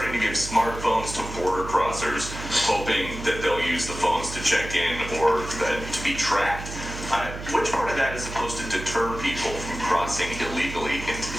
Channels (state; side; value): noise; right; hum, 9 dB below the sound